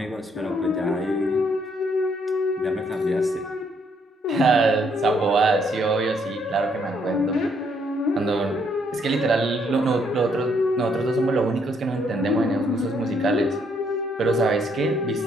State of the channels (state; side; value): normal; both; correlation 0.71